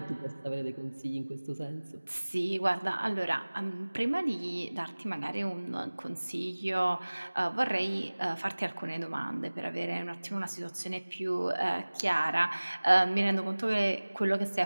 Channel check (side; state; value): both; inverted; correlation -1.00